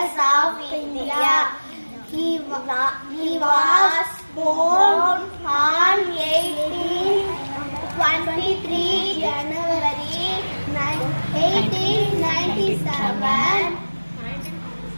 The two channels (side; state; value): both; inverted; correlation -1.00